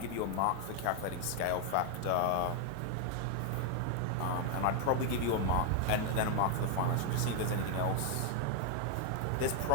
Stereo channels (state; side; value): different; both; correlation 0.00